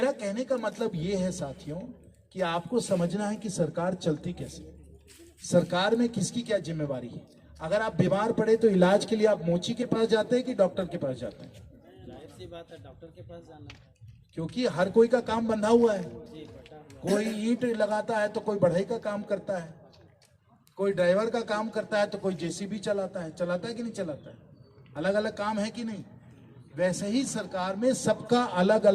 कहने का मतलब ये है साथियों, कि आपको समझना है कि सरकार चलती कैसे, सरकार में किसकी क्या जिम्मेवारी है। अगर आप बीमार पड़े तो इलाज के लिए आप मोची के पास जाते हैं कि डॉक्टर के पास जाते हैं? जाहिर सी बात है, डॉक्टर के पास जाना, क्योंकि हर कोई का काम बंधा हुआ है। कोई ईंट लगाता है तो कोई बढ़ई का काम करता है, कोई ड्राइवर का काम करता है, तो कोई जेसीबी चलाता है कि नहीं चलाता है? अलग अलग काम है कि नहीं? वैसे ही सरकार में सबका अलग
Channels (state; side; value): identical; both; correlation 1.00